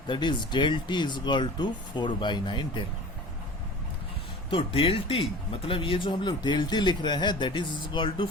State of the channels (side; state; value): both; normal; correlation 0.39